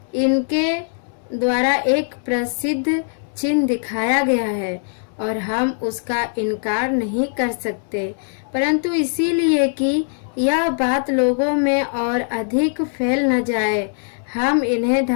इनके द्वारा एक प्रसिद्ध चिन्ह दिखाया गया है और हम उसका इनकार नहीं कर सकते, परंतु इसीलिए कि यह बात लोगों में और अधिक फैल न जाए, हम इन्हें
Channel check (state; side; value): silent; right; 63 dB below the other